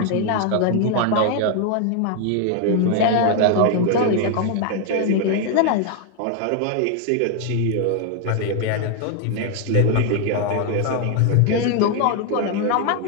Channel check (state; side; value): different; both; correlation 0.01